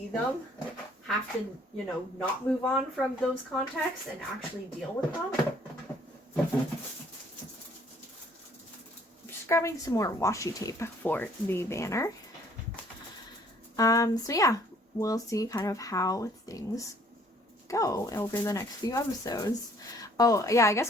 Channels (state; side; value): normal; both; correlation 0.60